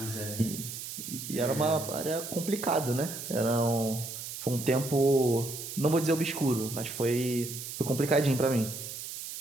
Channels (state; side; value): noise; right; hiss, 8 dB below the sound